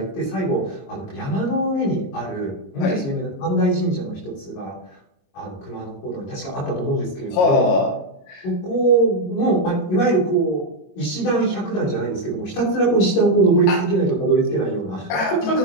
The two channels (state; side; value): late; right; 22 ms